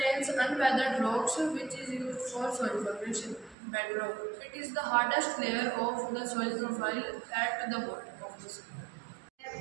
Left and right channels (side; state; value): left; drops out; at 3.6 s